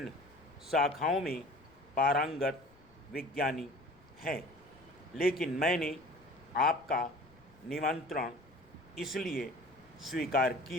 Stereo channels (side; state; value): left; noise; rumble, 28 dB below the sound